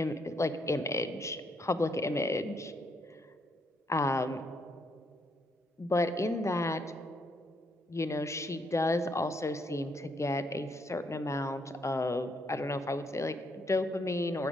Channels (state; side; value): normal; both; correlation 0.74